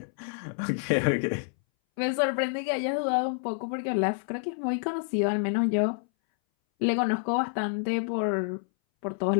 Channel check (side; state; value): right; silent; 59 dB below the other